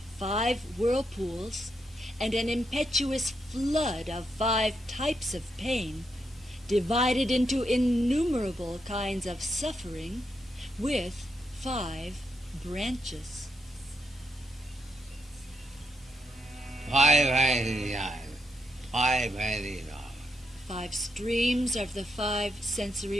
5 whirlpools and an impetuous flood of 5 types of pain, divided into innumerable kinds of suffering, with 5 branches. 5 streams of the 5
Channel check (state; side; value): normal; both; correlation 0.81